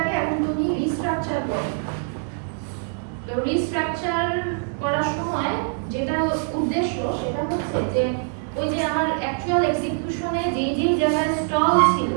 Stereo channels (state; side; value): silent; left; 56 dB below the other